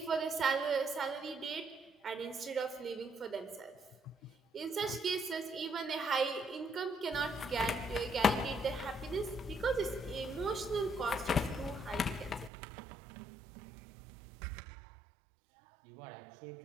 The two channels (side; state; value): left; drops out; at 12.5 s